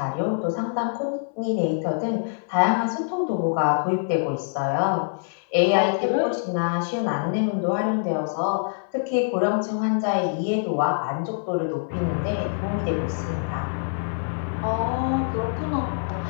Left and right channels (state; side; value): silent; right; 62 dB below the other